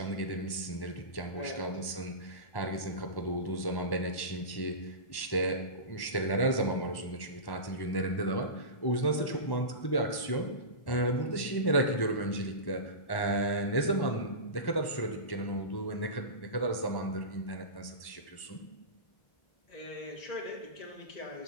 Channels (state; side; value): late; right; 1.1 ms